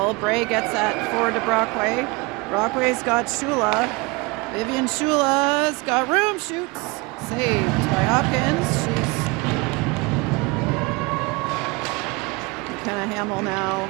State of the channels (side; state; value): left; quieter; 26.1 dB